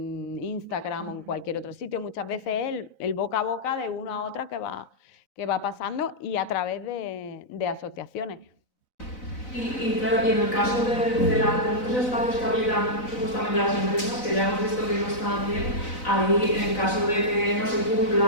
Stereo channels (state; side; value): late; right; 4.0 ms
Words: Instagram o en cualquier otro sitio. Muchas veces es el boca a boca de una a otra que va pasando y a través de asociaciones. Y claro, y en el caso de los espacios que habilitan supuestamente las empresas, que ya hemos visto que no están bien, ahí en el caso de que no se